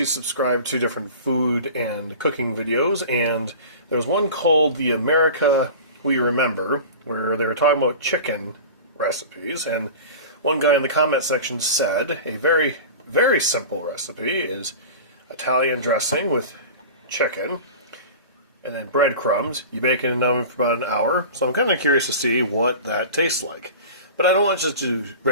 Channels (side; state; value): both; inverted; correlation -0.35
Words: subscribe to different food and cooking videos, and there's one called The America We Remember, where they were talking about chicken recipes, and one guy in the comment section said a very, very simple recipe is Italian dressing with chicken, and then breadcrumbs. You bake it in an oven for about an hour. So I'm kind of curious to see what that tastes like. But I don't want to just do